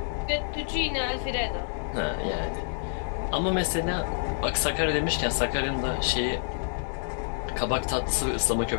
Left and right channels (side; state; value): right; silent; digital silence